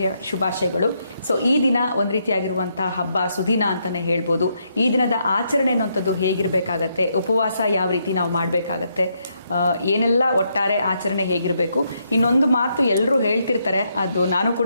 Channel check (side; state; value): both; inverted; correlation -0.77